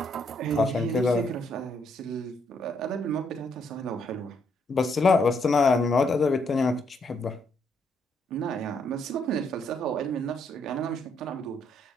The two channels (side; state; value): both; normal; correlation 0.73